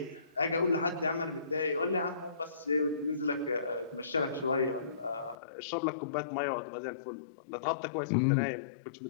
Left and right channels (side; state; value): right; drops out; at 5.4 s